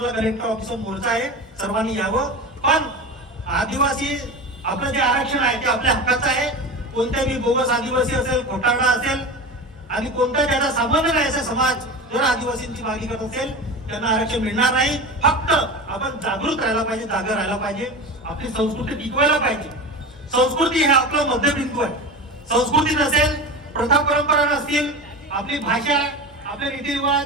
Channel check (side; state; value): both; normal; correlation 0.28